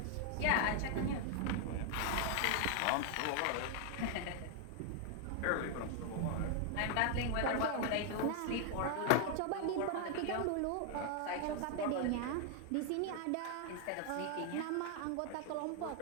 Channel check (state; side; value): different; both; correlation 0.00